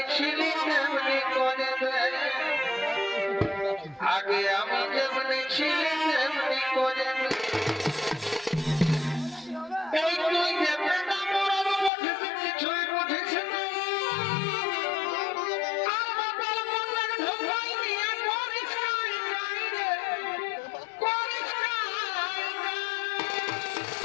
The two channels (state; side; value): drops out; right; at 11.9 s